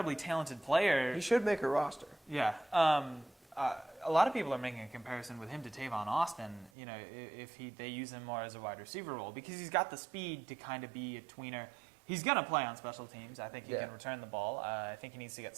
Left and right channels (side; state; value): left; drops out; at 6.7 s